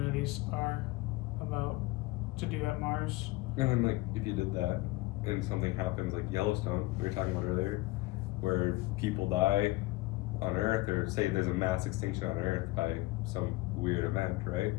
are about to do at Mars. And then like if you did that and something happens like Yellowstone we were talking about earlier, where people die on Earth, or say there's a mass extinction on Earth by some weird event, right?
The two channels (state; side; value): quieter; right; 20.5 dB